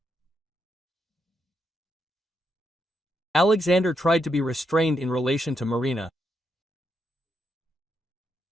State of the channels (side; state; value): both; normal; correlation 0.80